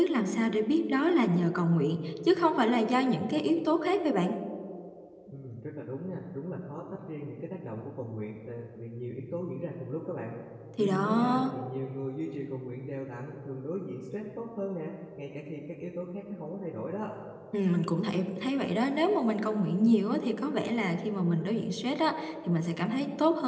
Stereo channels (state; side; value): identical; both; correlation 1.00